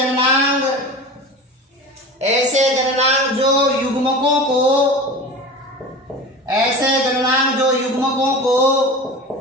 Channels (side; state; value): both; normal; correlation 0.33